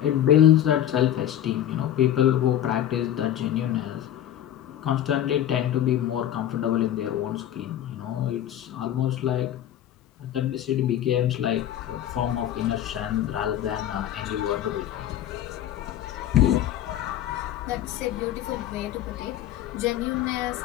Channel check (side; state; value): right; quieter; 11.3 dB